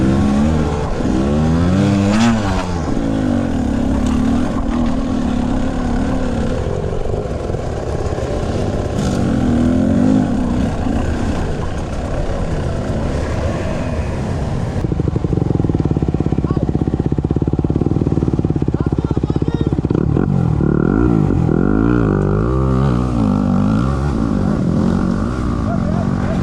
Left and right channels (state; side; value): identical; both; correlation 1.00